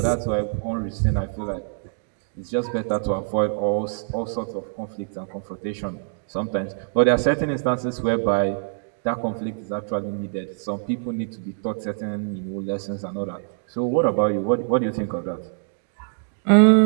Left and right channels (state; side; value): silent; left; digital silence